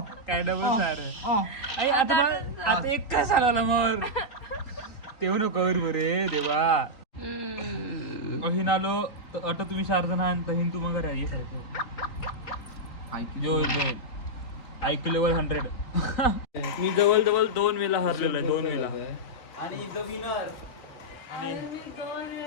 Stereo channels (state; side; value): late; right; 3.9 ms